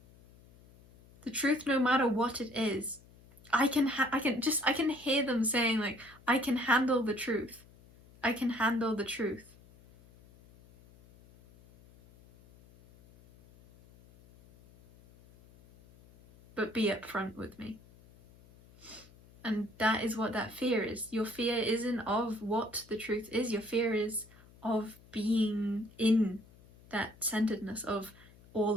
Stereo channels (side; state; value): left; noise; hum, 25 dB below the sound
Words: The truth, no matter what it is. I can hear them saying, like, I can handle the truth. I can handle the truth. But be upfront with me. And that is what that fear is. Your fear isn't of what the truth is. Your fear is of being in that centeredness of